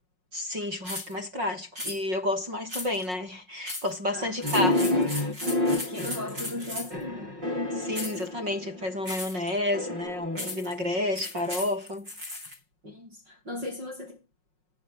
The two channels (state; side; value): late; left; 5.5 ms